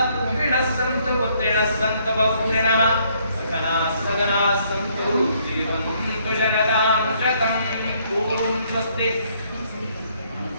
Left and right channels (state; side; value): inverted; both; correlation -0.68